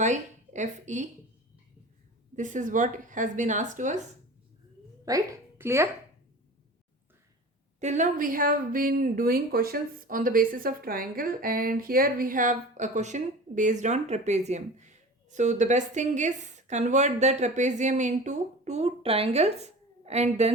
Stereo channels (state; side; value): normal; both; correlation 0.37